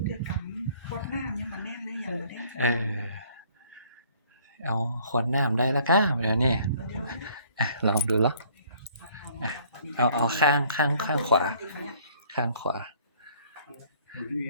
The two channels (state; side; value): inverted; both; correlation -0.59